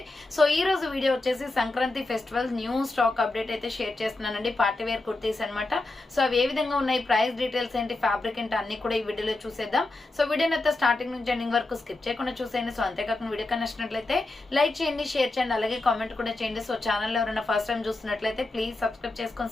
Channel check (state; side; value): quieter; right; 3.0 dB